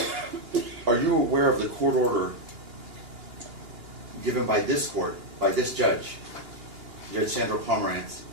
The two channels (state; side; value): late; left; 2.8 ms